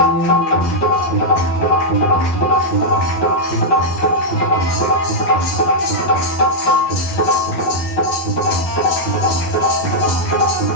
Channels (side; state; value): right; late; 12 ms